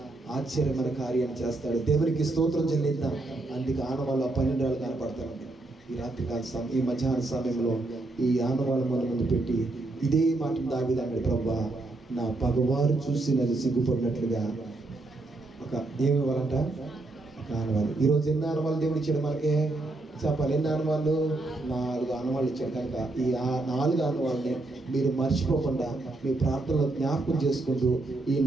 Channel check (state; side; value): quieter; left; 3.0 dB